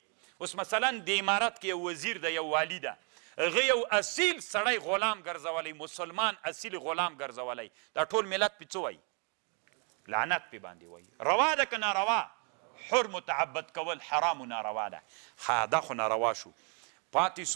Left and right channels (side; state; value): left; quieter; 37.6 dB